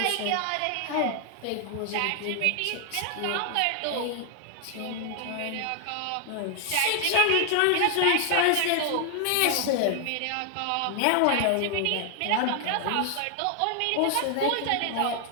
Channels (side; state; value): both; different; correlation 0.00